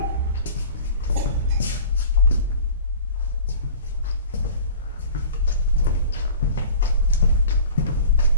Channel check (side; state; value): both; inverted; correlation -0.41